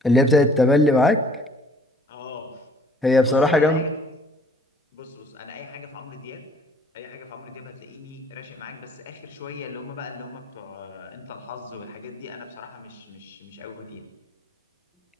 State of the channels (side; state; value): both; normal; correlation 0.57